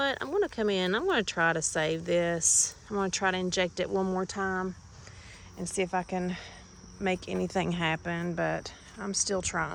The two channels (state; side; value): identical; both; correlation 1.00